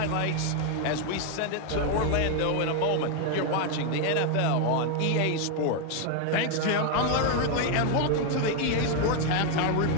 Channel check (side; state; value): both; different; correlation 0.01